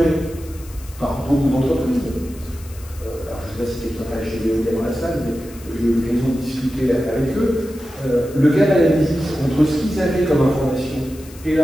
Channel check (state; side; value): noise; left; hiss, 21 dB below the sound